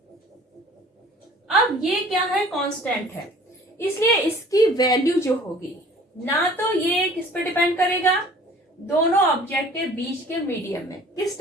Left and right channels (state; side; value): normal; both; correlation 0.49